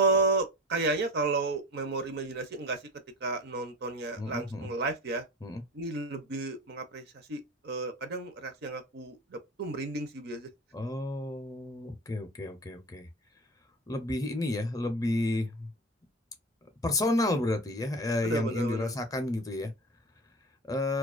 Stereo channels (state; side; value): normal; both; correlation 0.33